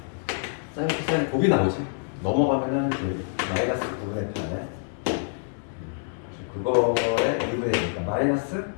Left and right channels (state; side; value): silent; right; 59 dB below the other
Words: 사인 코사인 곱이 나오지. 넘어가면은 마이너스 9분의 8 그거에 2분의 1이니까 마이너스